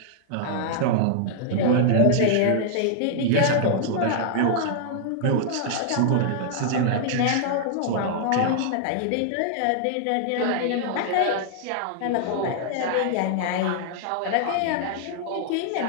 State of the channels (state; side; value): different; both; correlation -0.01